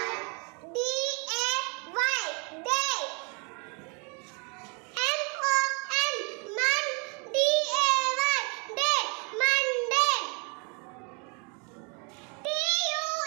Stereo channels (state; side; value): quieter; left; 33.9 dB